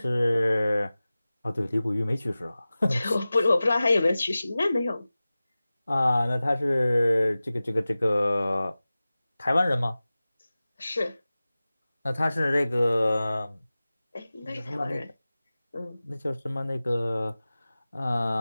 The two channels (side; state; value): both; inverted; correlation -0.97